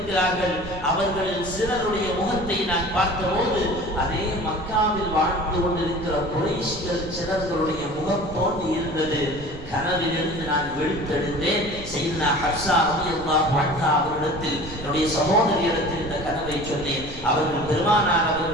அவர்களில் சிலருடைய முகத்தை நான் பார்த்தபோது அதே மக்காவில் வாழ்ந்து கொண்டிருக்கிற குறைஷிகள் சிலர்களுடைய முகம் போன்று இருந்தது. கனவிலிருந்து நான் விழித்தெடுத்தேன். செய்தனா ஹப்ஸா ரலியல்லாஹு அன்ஹா அவர்களிடத்தில், என்னுடைய சகோதரியிடத்தில் இந்த கனவை சொன்னேன். அவர்கள் பெருமானார்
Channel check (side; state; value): right; noise; rumble, 14 dB below the sound